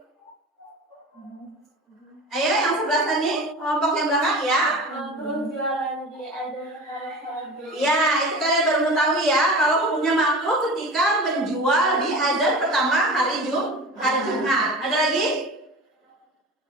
Ayo yang sebelah sini, kelompok yang belakang ya. Ya, itu kalian baru mengetahui ya kalau hukumnya makruh ketika menjual di azan pertama hari Jumat. Ada lagi?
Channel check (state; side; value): normal; both; correlation 0.34